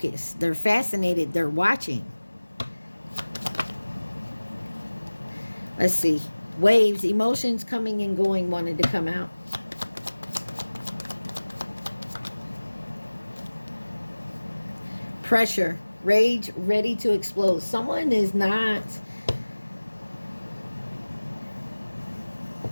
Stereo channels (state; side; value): inverted; both; correlation -1.00